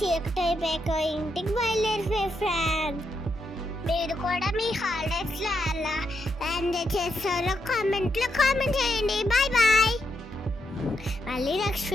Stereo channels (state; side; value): normal; both; correlation 0.81